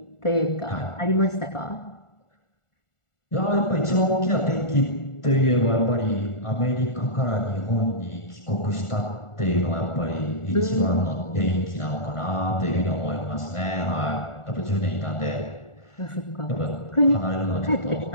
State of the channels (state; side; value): late; right; 1.4 ms